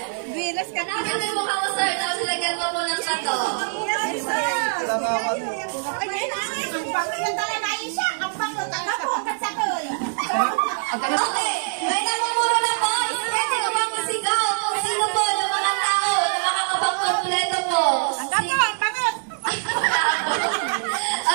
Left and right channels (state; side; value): silent; left; digital silence